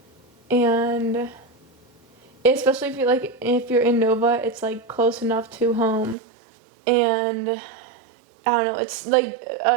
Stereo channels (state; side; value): drops out; left; at 6.2 s